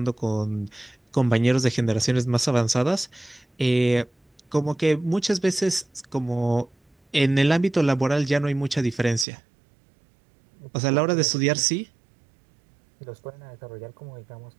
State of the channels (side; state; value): left; drops out; at 9.2 s